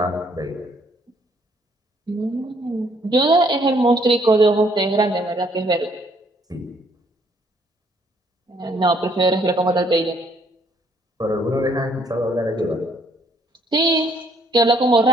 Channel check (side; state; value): both; normal; correlation 0.66